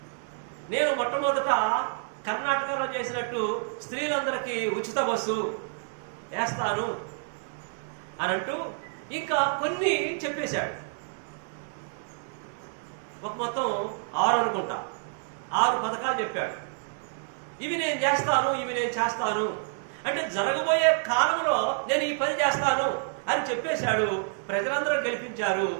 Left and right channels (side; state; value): left; silent; 59 dB below the other